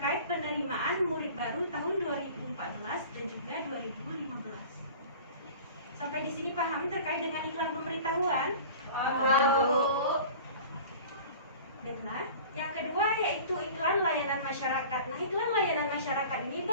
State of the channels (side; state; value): both; inverted; correlation -0.42